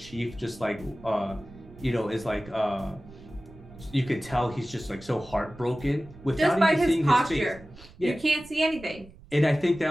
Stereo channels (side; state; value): right; noise; rumble, 21 dB below the sound